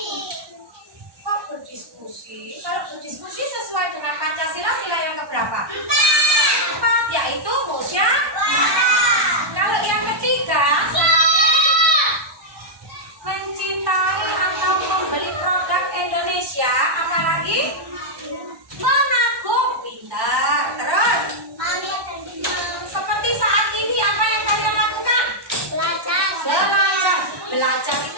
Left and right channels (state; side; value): late; left; 1.2 ms